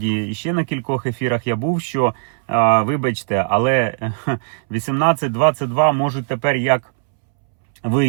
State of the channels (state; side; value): silent; left; 67 dB below the other